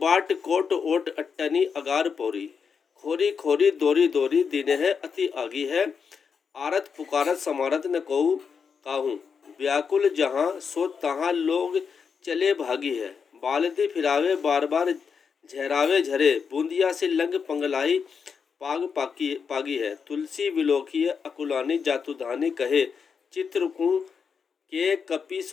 कोट ओट अट्टनी अगार पौरी खोरी खोरी दोरी दोरी दिन है अति आगी है। आरत पुकारत समारत न कहू काहू व्याकुल जहाँ सो तहाँ लोग चले भागी है। बालदी फिरावे बार बार झहरावे झरे बूंदिया से लंग पंगलाई पागी है। तुलसी विलोकी अकुलानी जातुधानी कहे चित्रकू के कपी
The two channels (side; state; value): right; quieter; 6.1 dB